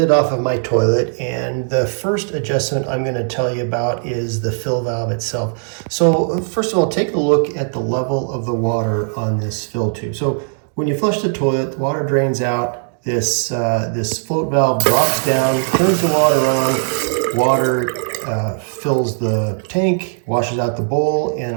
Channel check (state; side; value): silent; left; digital silence